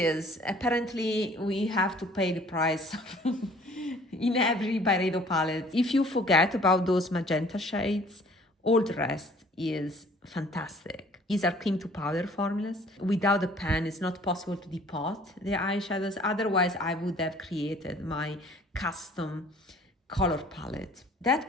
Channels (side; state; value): both; normal; correlation 0.53